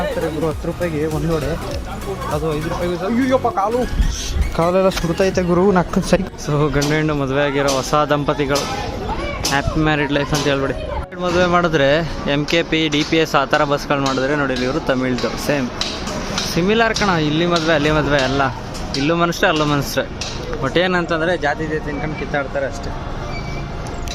ಗುರು. 10 ರೂಪಾಯಿಗೆ ಒಂದು ವಡೆ, ಅದು 5 ರೂಪಾಯಿಗೆ. ಅಯ್ಯಪ್ಪ, ಕಾಲೆಲ್ಲ ಸುಡ್ತೈತೆ ಗುರು, ನಕ್ಕ ಸರಿ. ಸೊ ಗಂಡು ಹೆಣ್ಣು ಮದುವೆ ಆಗಿರೋ ಹೊಸ ದಂಪತಿಗಳು, ಹ್ಯಾಪಿ ಮ್ಯಾರಿಡ್ ಲೈಫ್ ಅಂತ ಹೇಳ್ಬಿಡಿ. ಮದುವೆ ಮಾಡಿದ್ರೆ MKP DPS ಆ ಥರ ಬಸ್ಗಳು ಮಾಡಿದ್ರೆ ನೋಡಿ, ಇವರು ತಮಿಳ್ದು ಸೇಮ್ ಸಿಮಿಲರ್ ಕಣ. ಇಲ್ಲಿ ಮದುವೆ ಅಲ್ಲಿ ಮದುವೆ ಎಲ್ಲ, ಇಲ್ಲೂ ಮನುಷ್ಯ ಅಲ್ಲೂ ಮನುಷ್ಯ. ಬಟ್ ಏನಂತಂದರೆ ಜಾತಿ ತಿನ್ಕೊಂಡು ಕಿತ್ತಾಡ್ತಾರೆ ಅಷ್ಟೇ.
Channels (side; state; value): both; identical; correlation 1.00